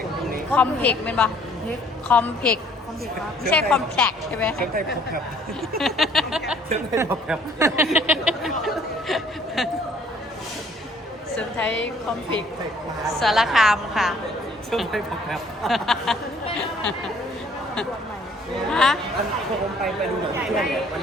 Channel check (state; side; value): normal; both; correlation 0.59